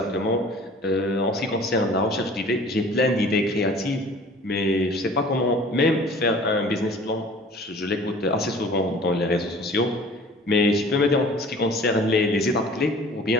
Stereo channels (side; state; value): both; normal; correlation 0.47